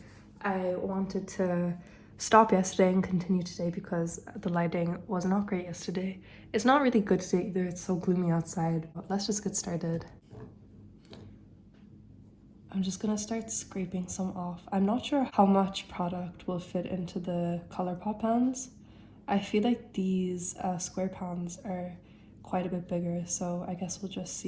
I wanted to stop yesterday and continue today because the lighting was not great yesterday. It's not really good today either, it's so gloomy outside. But let's just get started. I'm just gonna start scraping some off. I'm not sure how much product will fit into the ColourPop pans. I feel like these square pans are quite a bit bigger, so I guess we'll just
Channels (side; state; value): both; identical; correlation 1.00